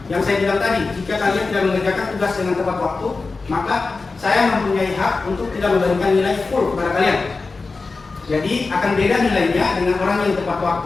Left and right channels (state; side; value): quieter; right; 4.0 dB